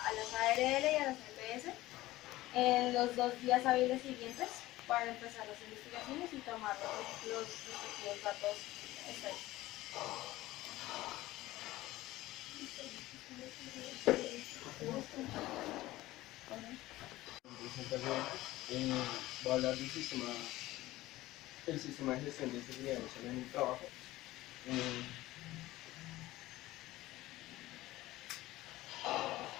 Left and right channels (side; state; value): right; quieter; 17.3 dB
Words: a las ARL y a las EPS en los 2 días hábiles siguientes para empezar las investigaciones y tomar los respectivos datos estadísticos. Voy a hablar del sistema de gestión de seguridad y salud en el trabajo.